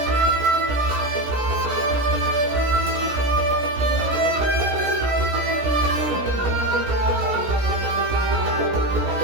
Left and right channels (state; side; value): late; left; 16 ms